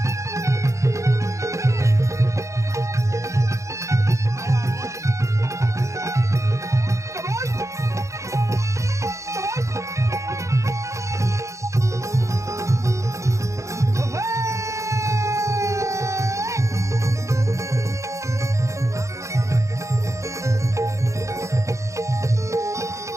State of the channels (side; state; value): left; late; 0.15 ms